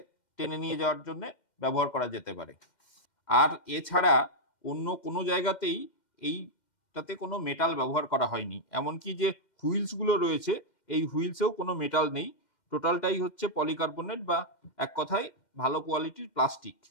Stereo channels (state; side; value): late; right; 2.1 ms